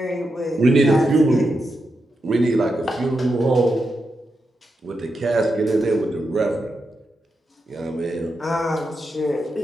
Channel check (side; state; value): both; normal; correlation 0.86